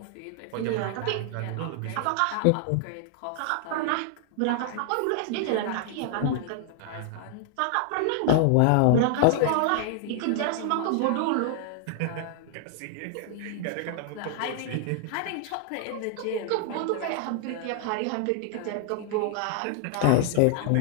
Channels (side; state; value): both; different; correlation -0.01